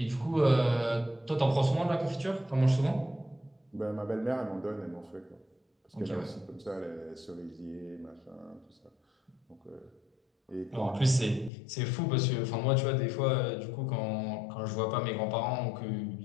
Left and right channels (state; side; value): drops out; right; at 11.5 s